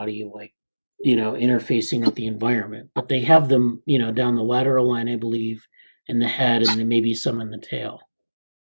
interfacing with the environment, but they have them, down the lateral line, I believe, in the head, and then maybe some in the tail.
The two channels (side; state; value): both; inverted; correlation -1.00